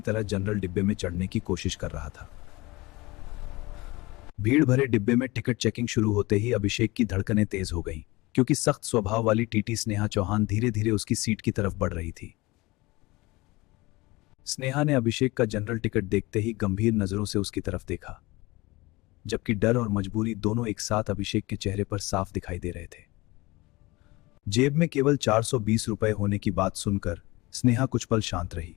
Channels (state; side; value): quieter; right; 22.0 dB